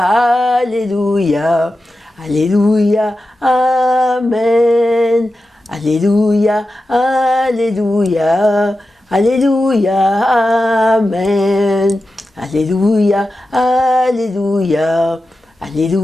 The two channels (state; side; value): normal; both; correlation 0.92